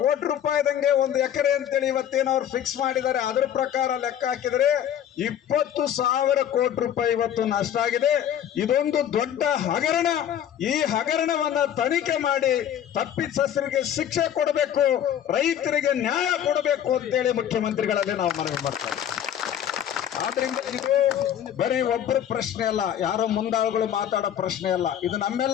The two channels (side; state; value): right; quieter; 10.1 dB